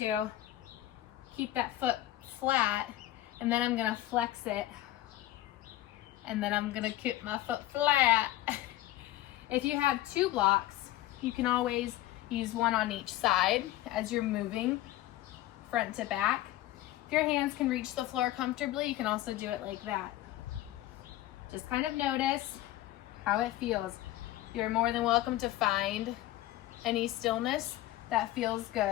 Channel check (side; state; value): right; quieter; 15.1 dB